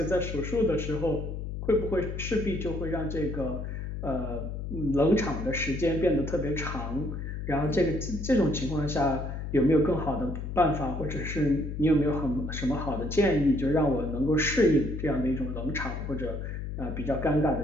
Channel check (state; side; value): noise; left; hum, 5 dB below the sound